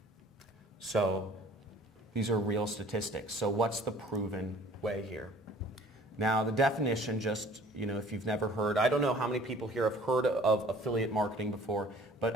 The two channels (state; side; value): normal; both; correlation 0.51